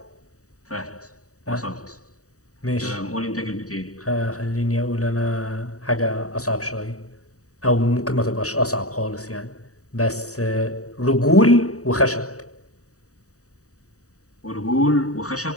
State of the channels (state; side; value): late; right; 0.66 ms